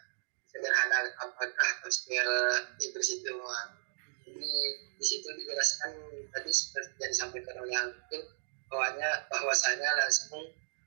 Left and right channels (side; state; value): left; silent; digital silence